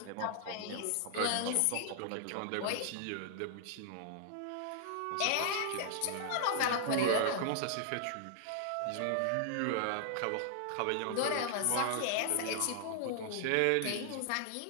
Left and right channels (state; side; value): different; both; correlation 0.00